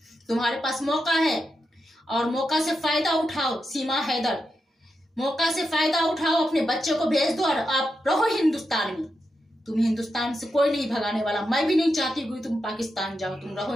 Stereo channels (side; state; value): both; normal; correlation 0.87